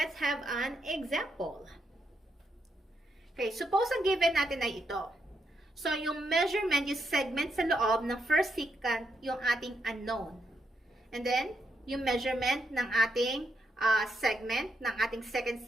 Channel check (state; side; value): normal; both; correlation 0.80